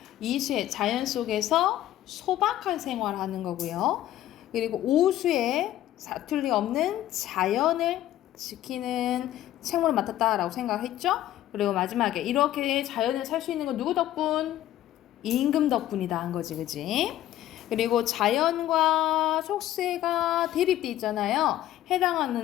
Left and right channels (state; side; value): quieter; right; 13.3 dB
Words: 이수에 자연 속에서 소박한 생활하는 거고요. 그리고 오수에 사투리 없는 자연을 지키는 책무를 맡았다라고 생각했죠. 그리고 마지막에 이렇게 자연을 살 수 있는 건 누구 덕분? 임금 덕분이다 한 거지, 그지? 그리고 자연과 속세가 대립돼 있잖아요.